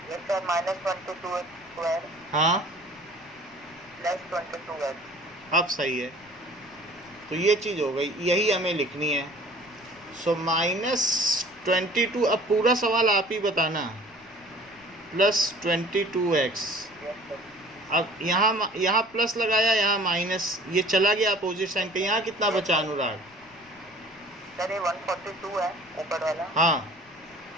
यस सर, -22x स्क्वायर हाँ, प्लस 22x। अब सही है। तो ये चीज़ हो गई, यही हमें लिखनी है। सो -22, अब पूरा सवाल आप ही बताना, प्लस 22x। Yes sir. अब यहाँ प्लस लगाया, यहाँ माइनस, ये चला गया अपोजिट साइन का। यहाँ कितना बचा अनुराग? सर ये 142 है ऊपर वाला। हाँ,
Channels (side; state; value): left; noise; rumble, 28 dB below the sound